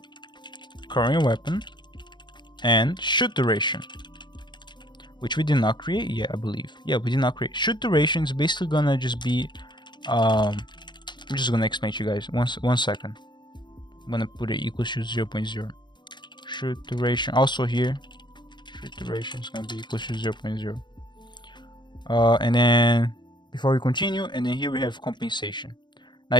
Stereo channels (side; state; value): right; late; 0.22 ms